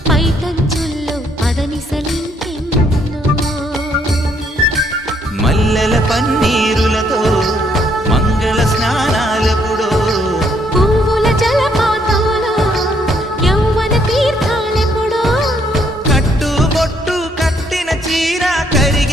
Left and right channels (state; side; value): normal; both; correlation 0.70